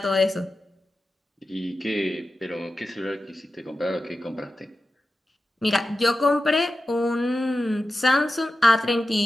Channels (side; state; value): both; normal; correlation 0.93